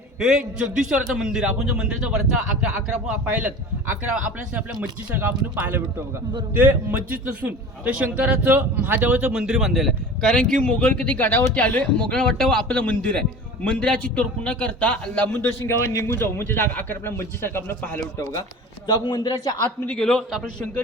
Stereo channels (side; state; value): both; normal; correlation 0.37